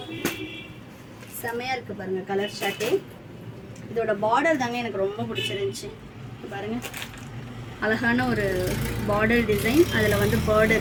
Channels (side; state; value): both; identical; correlation 1.00